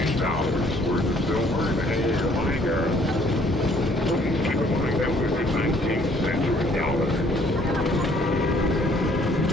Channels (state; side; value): normal; both; correlation 0.61